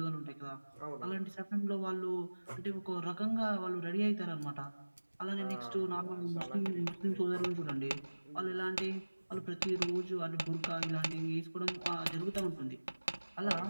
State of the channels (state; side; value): inverted; both; correlation -1.00